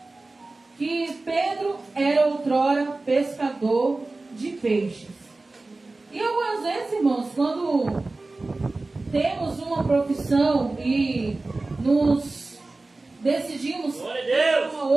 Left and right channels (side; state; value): left; quieter; 3.3 dB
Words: que Pedro era outrora pescador de peixes. E algumas vezes, irmãos, quando temos uma profissão e nos decidimos ter uma